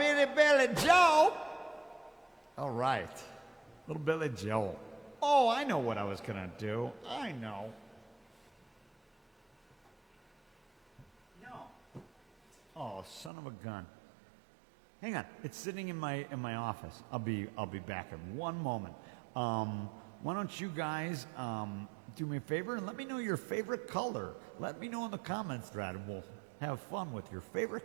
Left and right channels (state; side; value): drops out; left; at 13.3 s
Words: Joe. All right, little Billy Joe. Oh, I know what I was gonna do. I know. No. Oh, son of a gun. Hang on, it's sitting in my office. I'll be back in one moment. Why don't you guys do me a favor and let me know your favorite color. Let me know in the comments thread, and we'll have fun with your